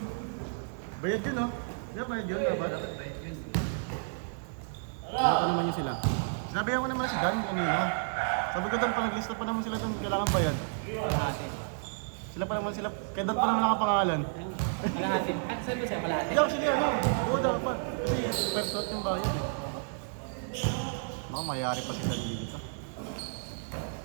Bayad yun, no? Diba bayad yun? Dapat. Ano naman yun sila? Sinabihan ko naman si Dan kung yun, ha? Sabi ko doon, pag-lista pa naman sila kung kailangan ba yan. Sila pa naman sila, kaya dapat naman nakapangalan. At saan ba siya kalahati? Ikaw, sige, ano? Oo, dapat. Pagkot yung bayan. Oh, mayari pa sila dito.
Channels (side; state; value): left; silent; digital silence